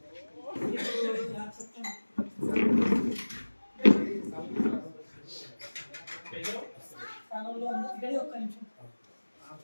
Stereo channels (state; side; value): inverted; both; correlation -1.00